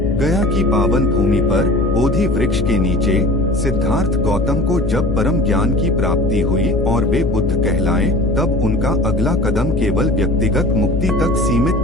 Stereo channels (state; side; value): noise; left; hum, 5 dB below the sound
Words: गया की पावन भूमि पर बोधि वृक्ष के नीचे सिद्धार्थ गौतम को जब परम ज्ञान की प्राप्ति हुई और वे बुद्ध कहलाए, तब उनका अगला कदम केवल व्यक्तिगत मुक्ति तक सीमित